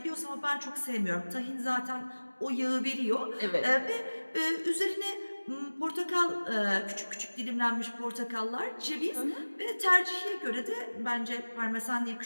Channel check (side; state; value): both; inverted; correlation -1.00